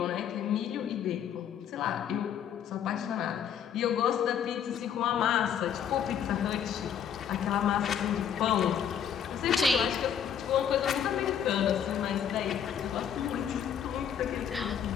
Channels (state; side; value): quieter; right; 8.6 dB